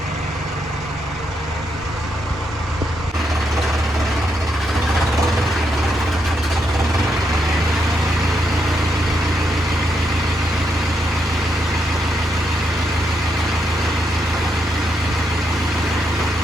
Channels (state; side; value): normal; both; correlation 0.79